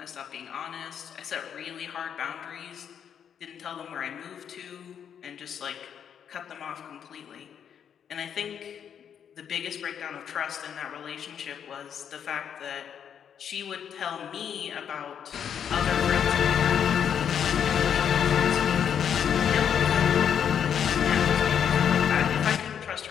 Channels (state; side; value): quieter; right; 8.3 dB